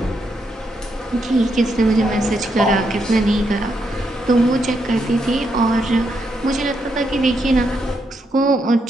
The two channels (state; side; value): normal; both; correlation 0.80